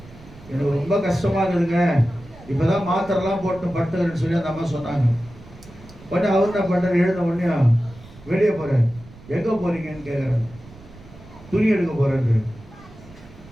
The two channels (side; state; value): right; noise; rumble, 21 dB below the sound